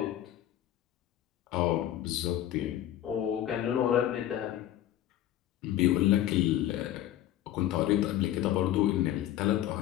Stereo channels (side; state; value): right; quieter; 12.5 dB